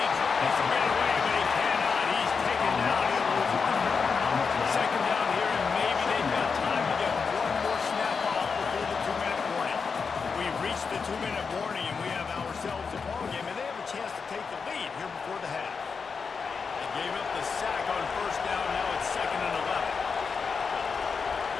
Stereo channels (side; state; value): right; quieter; 5.4 dB